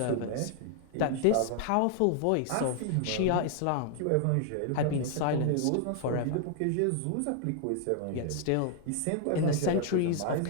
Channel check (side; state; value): both; different; correlation 0.00